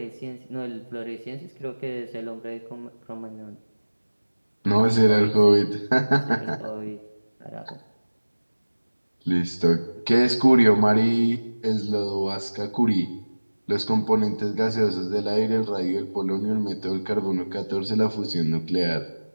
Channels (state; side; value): inverted; both; correlation -1.00